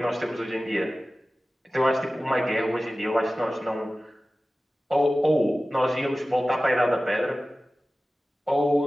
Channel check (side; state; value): both; normal; correlation 0.96